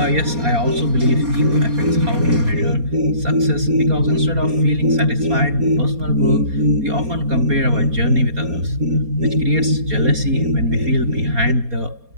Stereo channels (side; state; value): left; late; 4.2 ms